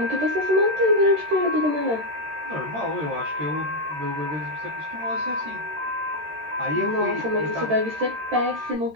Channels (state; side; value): late; left; 13 ms